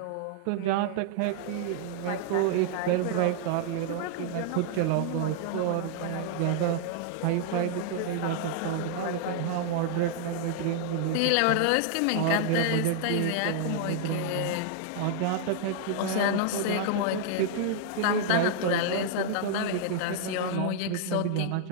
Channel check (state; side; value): different; both; correlation -0.01